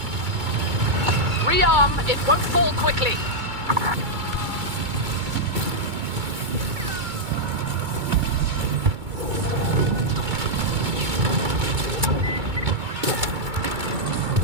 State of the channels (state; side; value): late; left; 2.3 ms